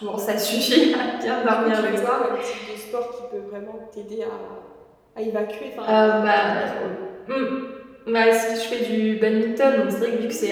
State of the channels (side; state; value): both; identical; correlation 1.00